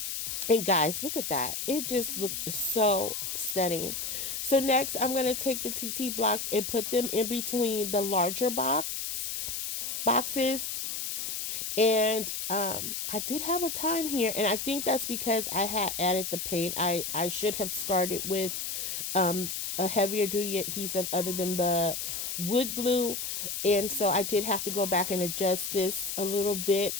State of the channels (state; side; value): noise; left; hiss, 4 dB below the sound